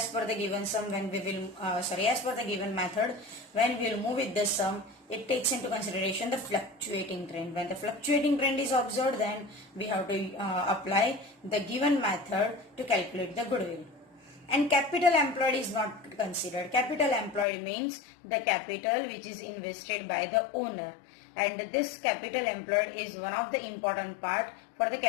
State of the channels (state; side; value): drops out; right; at 17.4 s